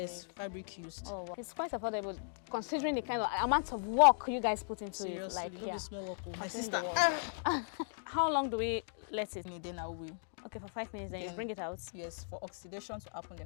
fabric used. Oh, wow. It's quite affordable considering the kind of amount of work you guys put into Seriously, it. Like, not be small work. My sister. How long do we let it? Then I will. Okay, for 5 minutes, then you bring it out. Yes, for oxidation to happen.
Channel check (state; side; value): silent; right; digital silence